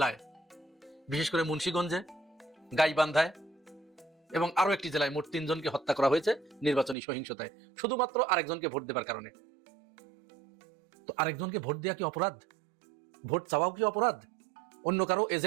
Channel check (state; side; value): drops out; left; at 7.0 s